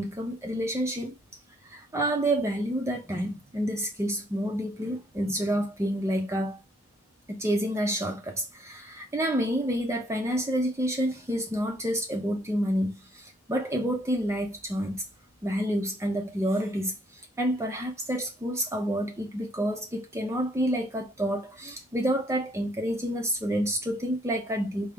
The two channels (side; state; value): both; normal; correlation 0.68